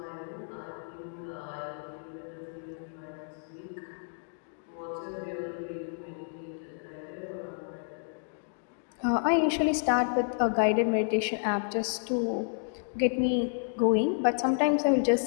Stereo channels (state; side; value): silent; right; digital silence